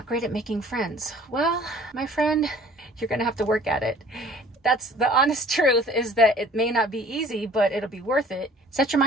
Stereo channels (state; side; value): normal; both; correlation 0.51